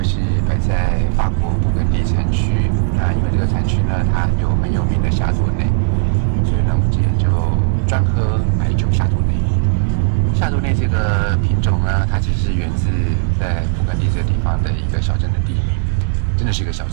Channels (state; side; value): silent; left; digital silence